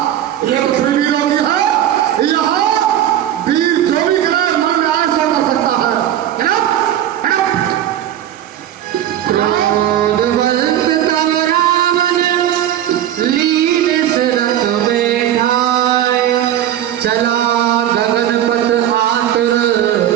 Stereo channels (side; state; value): left; quieter; 11.4 dB